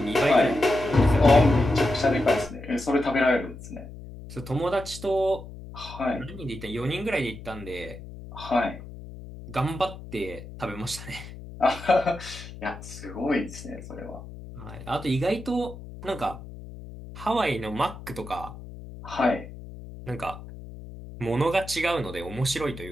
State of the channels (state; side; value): noise; left; hum, 14 dB below the sound